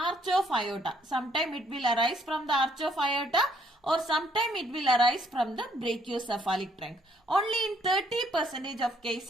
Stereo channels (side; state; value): both; normal; correlation 0.67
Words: of aorta. Sometime it will arise from the arch of aorta or sometime it will arise from the brachiocephalic trunk. Only in 30% of